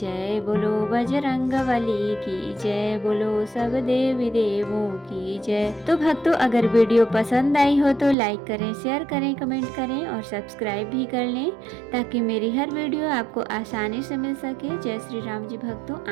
बोलो बजरंगबली की जय, बोलो सब देवी देवों की जय। तो भक्तों अगर वीडियो पसंद आई हो तो लाइक करें, शेयर करें, कमेंट करें और सब्सक्राइब भी कर लें ताकि मेरी हर वीडियो आपको आसानी से मिल सके। जय श्री राम जी भक्तों,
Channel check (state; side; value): drops out; left; at 8.2 s